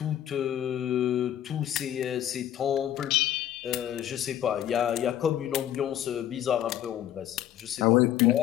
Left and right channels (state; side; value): quieter; right; 11.6 dB